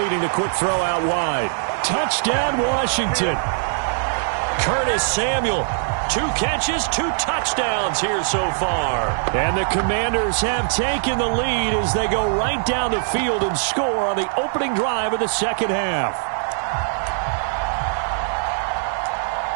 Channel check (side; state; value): left; silent; 65 dB below the other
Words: the quick throw out wide. Touchdown, Washington. Curtis Samuel. 2 catches, 2 touchdowns here so far. And the Commanders have taken the lead as they go right down the field and score on the opening drive of the second half.